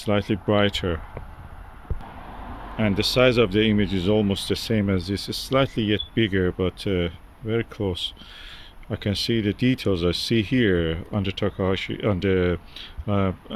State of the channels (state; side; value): identical; both; correlation 1.00